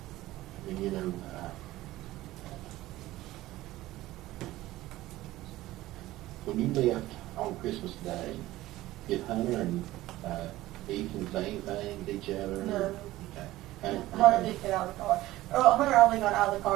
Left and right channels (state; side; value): quieter; left; 16.6 dB